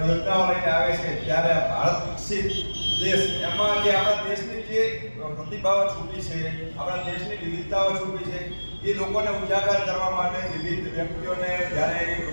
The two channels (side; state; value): both; inverted; correlation -1.00